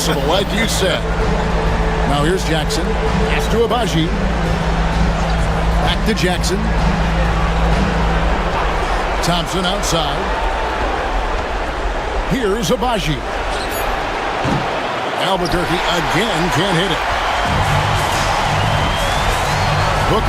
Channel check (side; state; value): both; identical; correlation 1.00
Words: like you said. Now here's Jackson. Pass to Abaji. Back to Jackson. Thompson outside. Here's Abaji. Albuquerque again can't hit it.